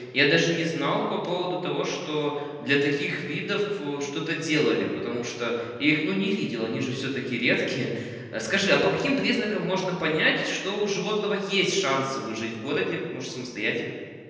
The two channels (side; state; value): both; identical; correlation 1.00